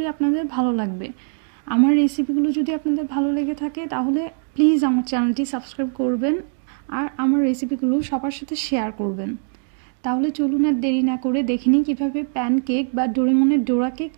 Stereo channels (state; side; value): silent; left; 60 dB below the other